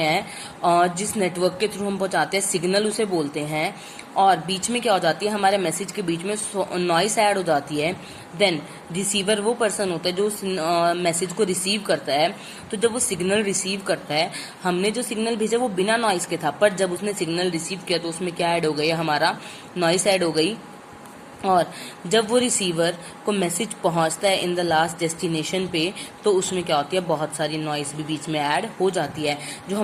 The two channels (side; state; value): both; identical; correlation 1.00